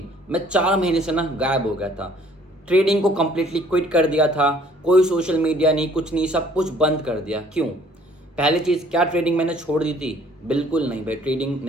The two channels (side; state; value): both; normal; correlation 0.58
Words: मैं 4 महीने से ना गायब हो गया था। ट्रेडिंग को कम्प्लीटली क्विट कर दिया था। कोई सोशल मीडिया नहीं, कुछ नहीं, सब कुछ बंद कर दिया। क्यों? पहली चीज़, क्या ट्रेडिंग मैंने छोड़ दी थी? बिल्कुल नहीं भाई, ट्रेडिंग